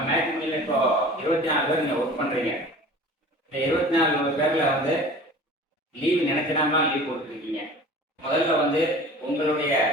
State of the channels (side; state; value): both; normal; correlation 0.42